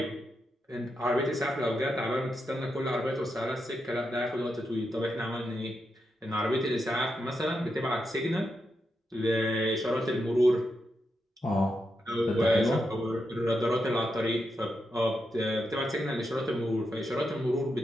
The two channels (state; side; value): normal; both; correlation 0.85